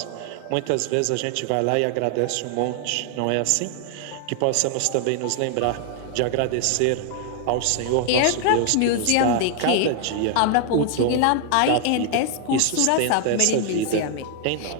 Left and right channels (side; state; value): both; different; correlation 0.00